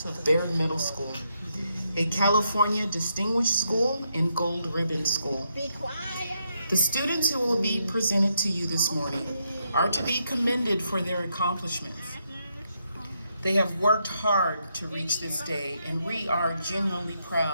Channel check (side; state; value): both; inverted; correlation -0.79